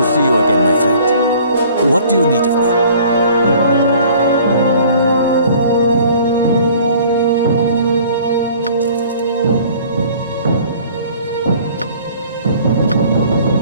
see you again, my friend. What do you need of me?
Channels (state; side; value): inverted; both; correlation -0.52